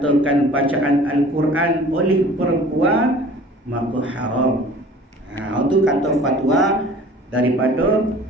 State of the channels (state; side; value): normal; both; correlation 0.47